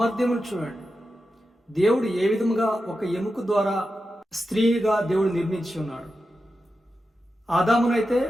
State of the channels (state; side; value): normal; both; correlation 0.90